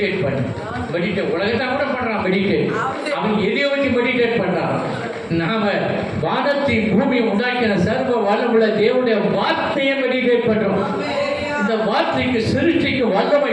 பண்ணு, மெடிடேட். உலகத்தான் கூட பண்ணுறான் மெடிடேட். அவன் எதையோ வச்சு மெடிடேட் பண்ணுறான். நாம வானத்தின் பூமியை உண்டாக்கின சர்வ வல்லமுள்ள தேவனுடைய வார்த்தையை மெடிடேட் பண்ணுறோம். இந்த வார்த்தைக்கு சிருஷ்டிக்கு வல்லமை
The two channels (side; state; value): both; identical; correlation 1.00